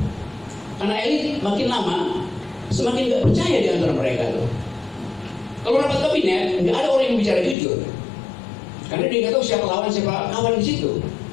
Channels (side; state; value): right; drops out; at 7.6 s